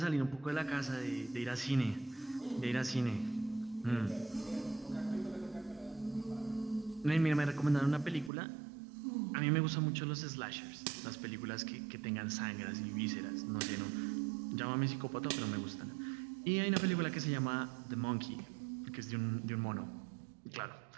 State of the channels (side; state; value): left; drops out; at 8.3 s